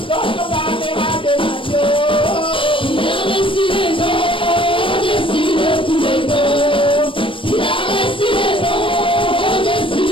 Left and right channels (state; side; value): late; right; 0.25 ms